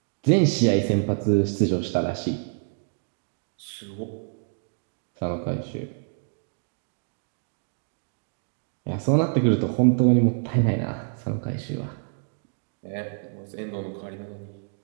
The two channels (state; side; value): silent; left; digital silence